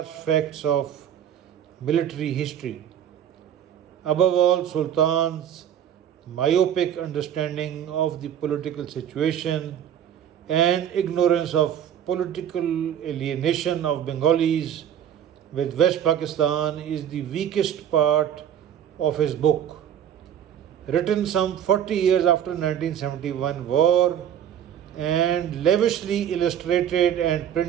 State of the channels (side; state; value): left; quieter; 9.7 dB